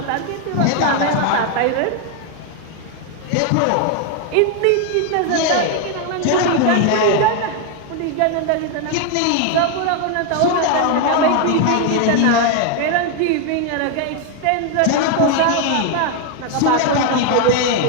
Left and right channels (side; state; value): both; different; correlation 0.01